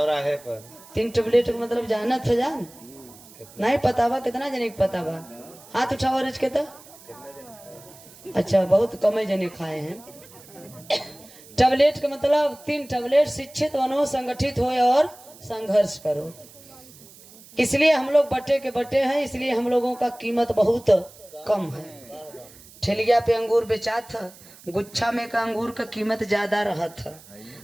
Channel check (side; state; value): right; noise; hiss, 22 dB below the sound